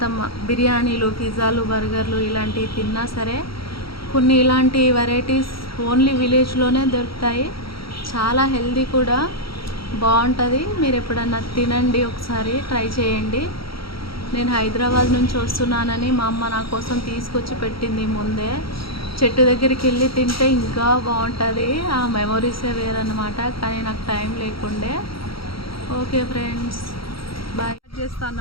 బిర్యానీలు, పిజ్జాలు, బర్గర్లు ఇలాంటివి తిన్నా సరే కొన్ని ఇలాంటి వెరైటీస్ ఓన్లీ విలేజ్లోనే దొరుకుతాయి. చాలా హెల్దీ కూడా, బాగుంటుంది. మీరు ఎప్పుడన్నా తినండి, ఒకసారి ట్రై చేయండి. నేను హైదరాబాద్ నుంచి వస్తున్నానని మా అమ్మ నా కోసం తీసుకొచ్చి పెట్టింది ముందే. చెట్టు దగ్గరికి వెళ్ళి తింటే ఇంకా బాగుంటుంది. ఆ మెమొరీసే వేరన్నమాట. కానీ నాకు టైం లేకుండే. ఓకే ఫ్రెండ్స్, బాయ్ చేస్తాను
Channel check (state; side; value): late; right; 0.75 ms